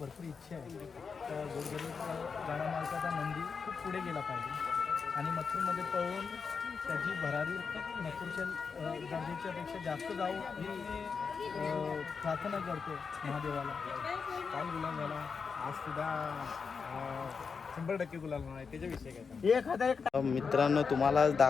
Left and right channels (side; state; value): right; quieter; 5.5 dB